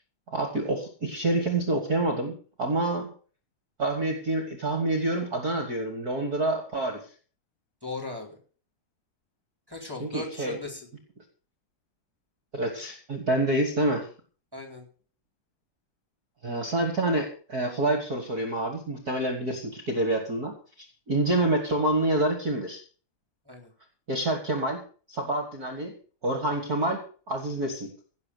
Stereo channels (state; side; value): late; left; 1.1 ms